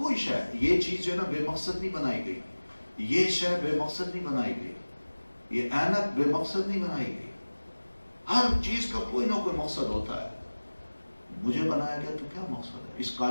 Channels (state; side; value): inverted; both; correlation -1.00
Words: شے، یہ چیز جو ہے نا بے مقصد نہیں بنائی گئی، یہ شے بے مقصد نہیں بنائی گئی، یہ اینک بے مقصد نہیں بنائی گئی. ہر چیز کا کوئی نہ کوئی مقصد ہوتا ہے. مجھے بنایا گیا تو کیا مقصد ہے؟ اس